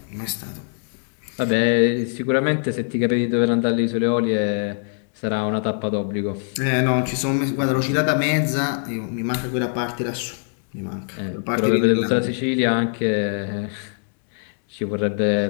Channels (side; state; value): right; silent; 59 dB below the other